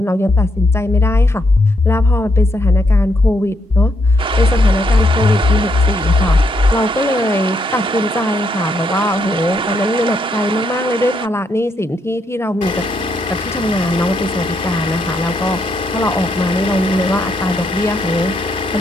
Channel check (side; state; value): both; normal; correlation 0.77